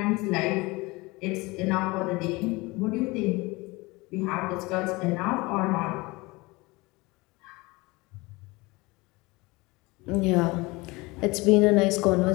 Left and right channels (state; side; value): quieter; right; 23.5 dB